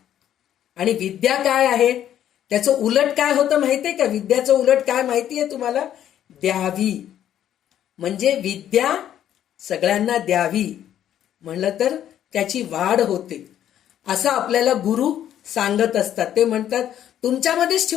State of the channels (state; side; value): quieter; right; 10.8 dB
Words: आणि विद्या काय आहे, त्याचं उलट काय होतं माहितीये का? विद्याचं उलट काय माहितीये तुम्हाला? द्यावी. म्हणजे विद्या सगळ्यांना द्यावी म्हणलं तर त्याची वाढ होते, असं आपल्याला गुरु सांगत असतात. ते म्हणतात तुमच्यामध्येच